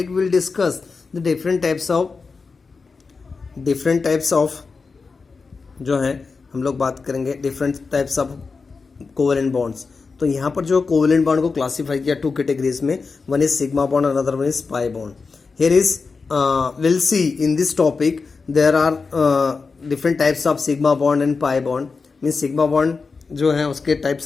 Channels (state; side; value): quieter; right; 4.6 dB